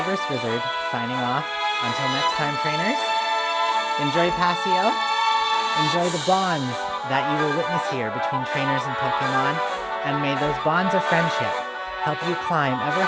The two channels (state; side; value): identical; both; correlation 1.00